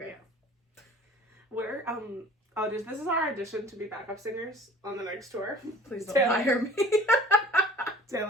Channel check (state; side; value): normal; both; correlation 0.47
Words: Yeah. We're, this is our audition to be backup singers on the next tour. Please don't hire me.